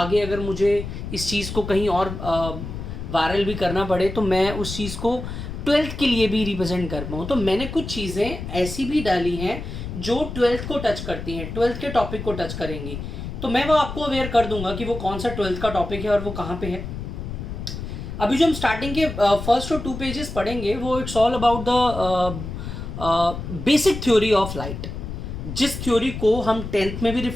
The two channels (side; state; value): left; noise; rumble, 7 dB below the sound